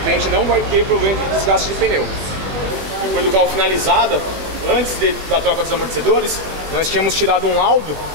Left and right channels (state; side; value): late; left; 20 ms